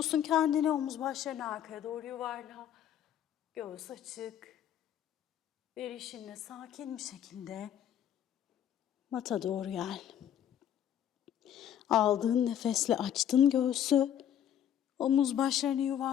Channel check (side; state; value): right; quieter; 10.2 dB